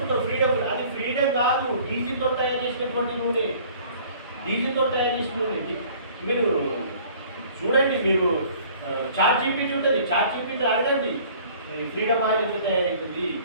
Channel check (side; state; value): both; inverted; correlation -0.52